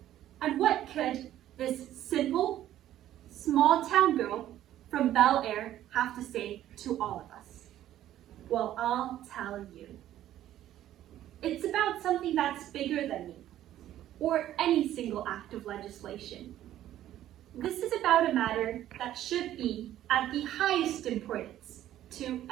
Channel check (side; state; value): left; quieter; 12.6 dB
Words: And what could this simple, small-town girl from Bel Air have to say to all of us? Well, I'll tell you. It's about something that's bigger than me, or any single act of legislation. This is about a matter that should be at the highest importance to